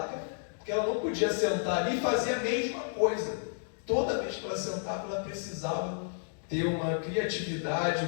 porque ela não podia sentar ali e fazer a mesma coisa. Toda vez que ela sentava, ela precisava ter uma criatividade,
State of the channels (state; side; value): silent; right; digital silence